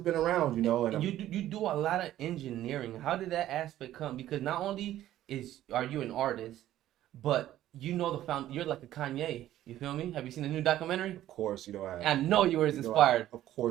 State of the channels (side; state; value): left; quieter; 13.2 dB